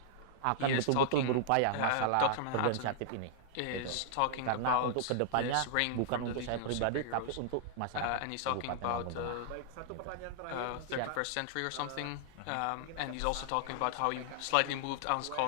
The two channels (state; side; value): different; both; correlation -0.01